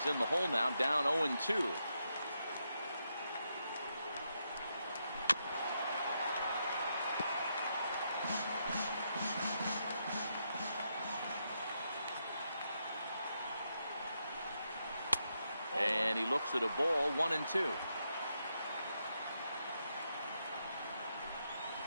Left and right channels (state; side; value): inverted; both; correlation -0.82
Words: in the hole now, down 0-2. And he looks at a ball, 1-2.